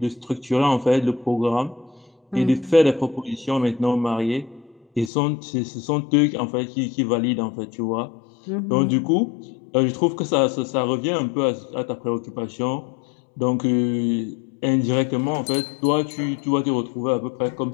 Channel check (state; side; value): drops out; right; at 5.1 s